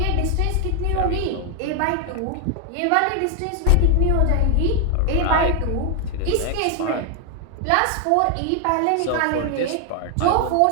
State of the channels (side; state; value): both; different; correlation 0.00